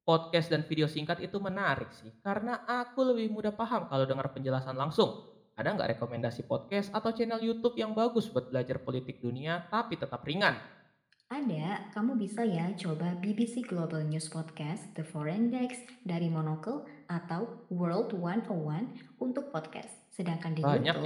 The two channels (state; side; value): identical; both; correlation 1.00